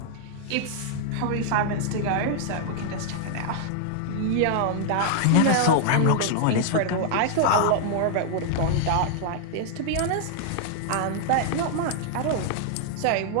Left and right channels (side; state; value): both; different; correlation -0.01